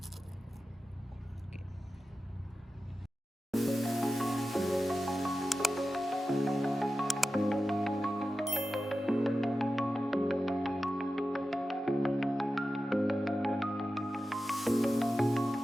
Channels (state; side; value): normal; both; correlation 0.93